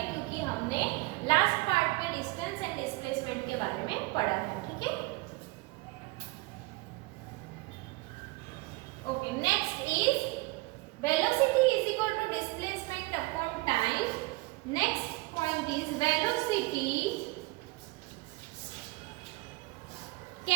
क्योंकि हमने लास्ट पार्ट में डिस्टेंस एंड डिस्प्लेसमेंट के बारे में पढ़ा है। ठीक है, okay, next is velocity is equal to displacement upon time. Next point is velocity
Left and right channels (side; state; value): left; quieter; 22.4 dB